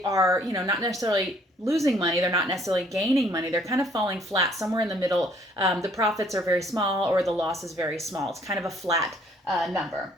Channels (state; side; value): normal; both; correlation 0.62